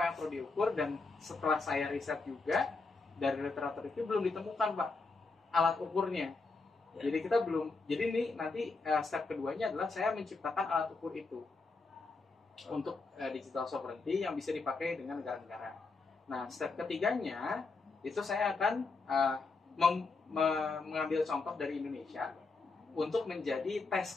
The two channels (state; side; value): quieter; right; 3.9 dB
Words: yang perlu diukur, dan setelah saya riset juga dari literatur itu belum ditemukan Pak alat ukurnya. Ya. Jadi kita belum. Jadi ini nanti step keduanya adalah saya menciptakan alat ukur itu untuk digital sovereignty yang bisa dipakai dengan negara-negara. Nah, step ketiganya itu saya akan mengambil contoh dari Indonesia untuk menjadi test